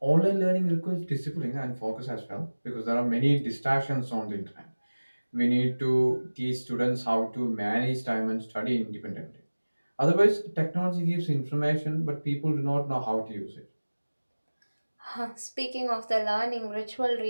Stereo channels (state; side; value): inverted; both; correlation -1.00